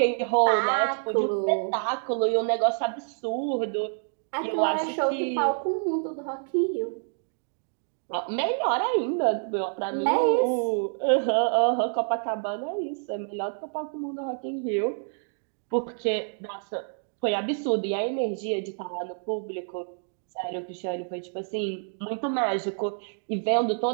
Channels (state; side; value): silent; left; 60 dB below the other